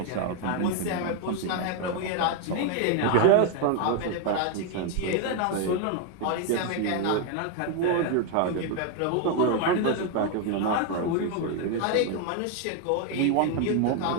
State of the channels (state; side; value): different; both; correlation 0.01